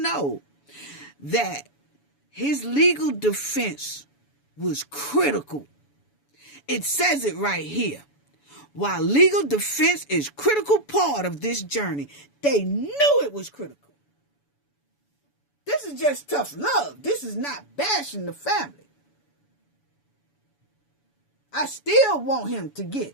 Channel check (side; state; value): right; late; 7.0 ms